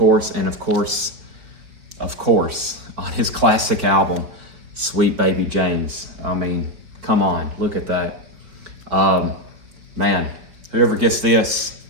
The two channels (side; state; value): left; late; 4.7 ms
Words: and of course, on his classic album, Sweet Baby James. I mean, come on, look at that. Man, whoever gets this,